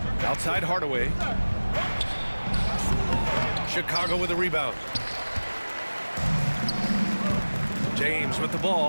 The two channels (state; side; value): inverted; both; correlation -1.00